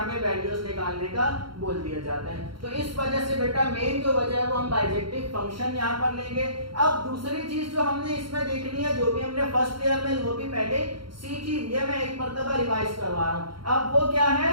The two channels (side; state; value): left; late; 0.73 ms